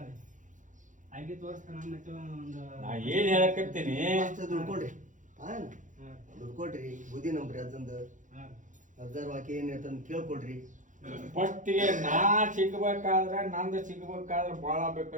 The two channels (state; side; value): late; left; 0.37 ms